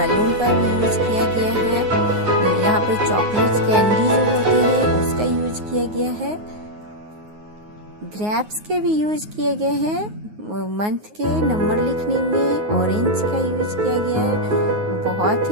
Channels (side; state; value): left; late; 9.5 ms